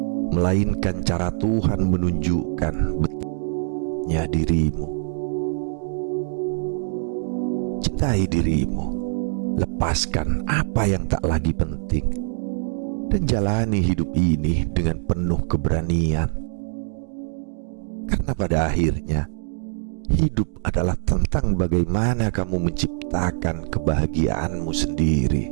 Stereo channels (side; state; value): left; silent; digital silence